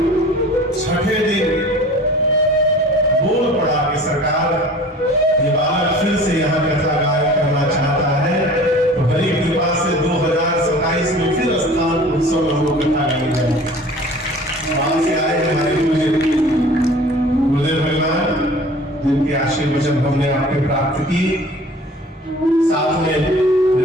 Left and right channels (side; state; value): both; normal; correlation 0.45